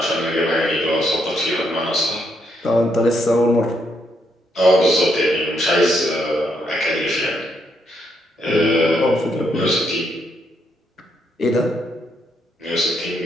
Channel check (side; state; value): both; normal; correlation 0.76